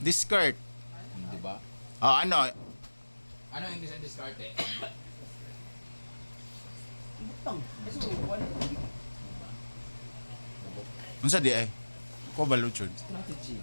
Di ba? Ano? Ano ang English ng diskarte? Unsa di ay? Ko baluchod. Strategy.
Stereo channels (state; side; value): inverted; both; correlation -1.00